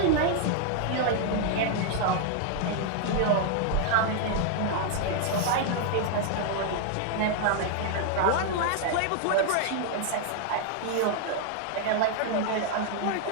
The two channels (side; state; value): both; different; correlation 0.00